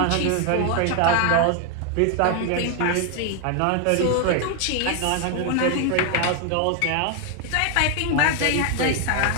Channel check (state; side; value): different; both; correlation 0.00